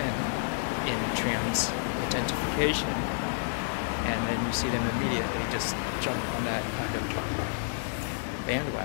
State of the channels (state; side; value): silent; right; digital silence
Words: in trans identification, and then you see them immediately just jump on that kind of